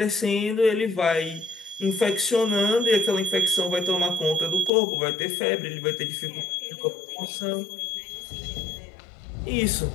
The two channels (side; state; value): right; drops out; at 4.7 s